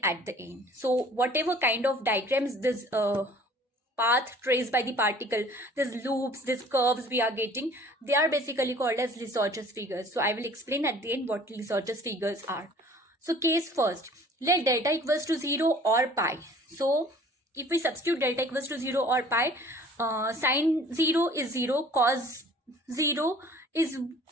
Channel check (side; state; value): both; normal; correlation 0.50